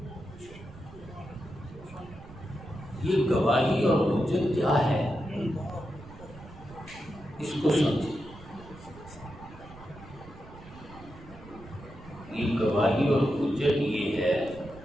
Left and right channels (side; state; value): right; noise; rumble, 18 dB below the sound